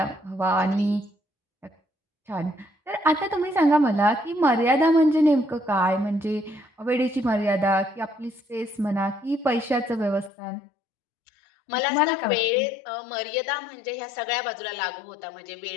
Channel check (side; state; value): right; drops out; at 10.3 s